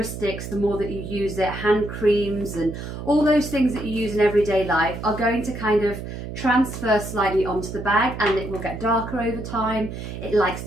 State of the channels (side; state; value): right; noise; hum, 8 dB below the sound